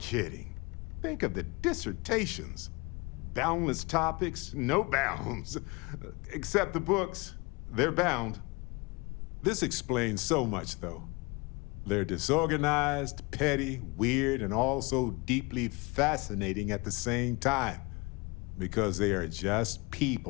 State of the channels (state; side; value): quieter; right; 26.6 dB